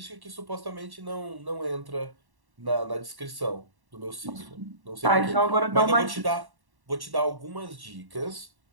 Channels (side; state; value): left; late; 1.1 ms